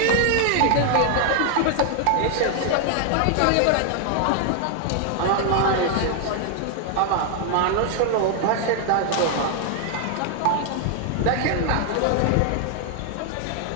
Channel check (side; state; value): both; different; correlation 0.00